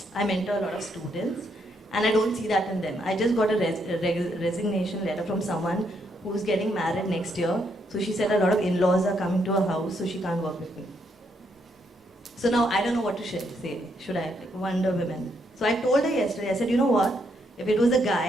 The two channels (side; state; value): both; normal; correlation 0.75